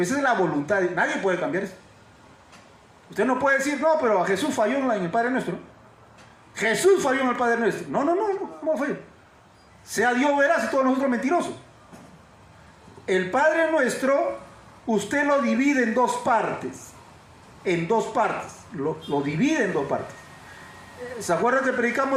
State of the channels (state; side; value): identical; both; correlation 1.00